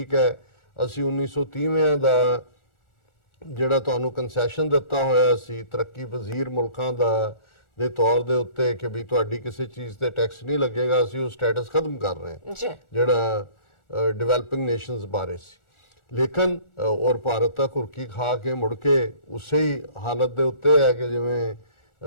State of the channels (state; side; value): late; right; 1.4 ms